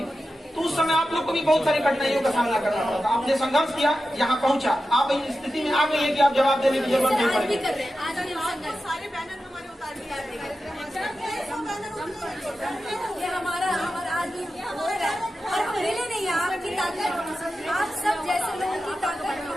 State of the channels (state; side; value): normal; both; correlation 0.92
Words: तो उस समय आप लोग को भी बहुत सारी कठिनाइयों का सामना करना पड़ा था। आपने संघर्ष किया, यहाँ पहुँचा, आप इस स्थिति में आ गई है कि आप जवाब देने की जरूरत नहीं पड़ेगी। सारे बैनर हमारे उतार दिए हमारा आज और पहले नहीं, आपकी ताकत, आप सब जैसे लोगों की ताकत।